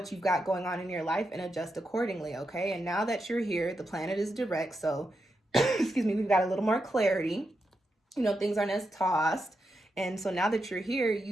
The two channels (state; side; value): normal; both; correlation 0.86